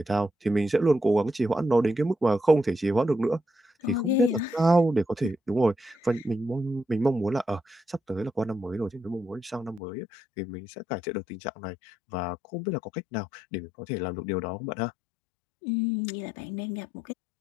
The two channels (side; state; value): right; drops out; at 9.8 s